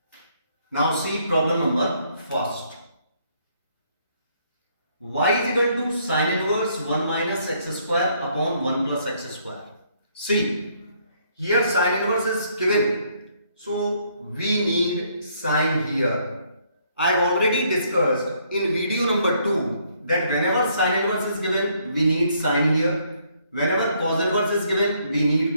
Now see problem number first. Y is equal to sin inverse 1 minus x square upon 1 plus x square. See, here sin inverse is given. So we need sin here. I have already discussed in video number 2 that whenever sin inverse is given, we need sin here. Whenever cos inverse is given, we need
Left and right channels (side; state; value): both; inverted; correlation -0.68